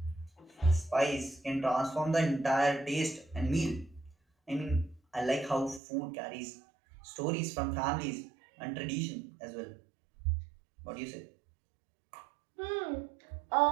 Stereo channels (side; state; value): left; drops out; at 5.8 s